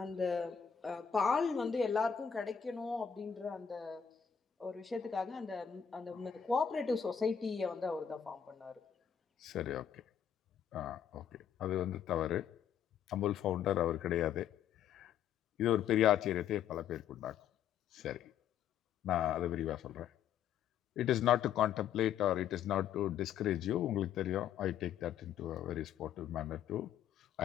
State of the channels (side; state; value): right; quieter; 8.5 dB